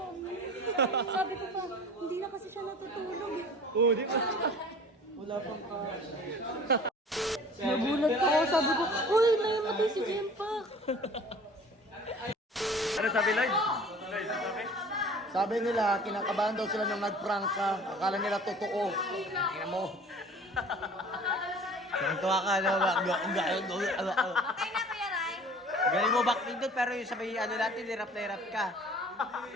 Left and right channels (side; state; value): both; normal; correlation 0.46